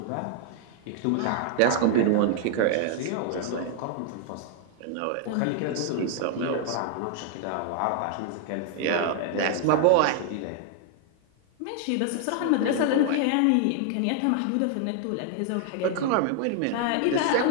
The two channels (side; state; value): both; different; correlation 0.00